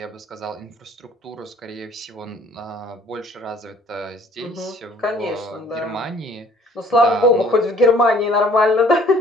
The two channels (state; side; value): normal; both; correlation 0.56